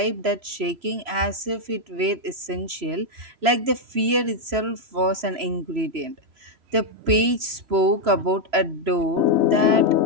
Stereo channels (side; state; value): left; late; 3.0 ms